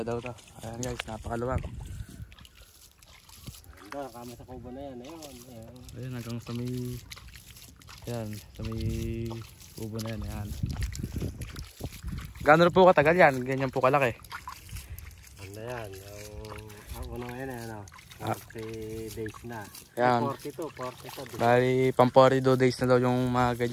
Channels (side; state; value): both; identical; correlation 1.00